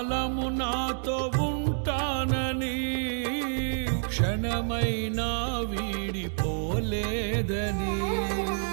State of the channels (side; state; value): left; silent; digital silence